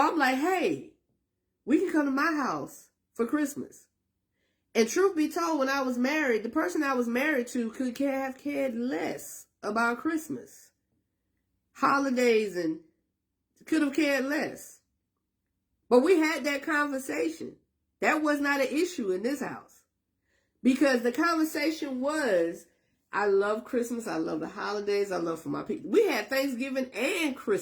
like, hey, we can come to my house for Christmas. And truth be told, when I was married, the person I was married to could have cared less about Christmas, holidays, and could have cared less. But we had that conversation. That was not an issue in this house. Because the conversation was, I love Christmas, I love the holidays, I love for my people. We had Thanksgiving and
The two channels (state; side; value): identical; both; correlation 1.00